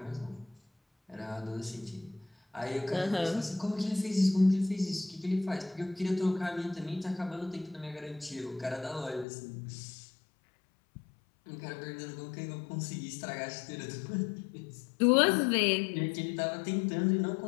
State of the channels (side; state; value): right; drops out; at 9.2 s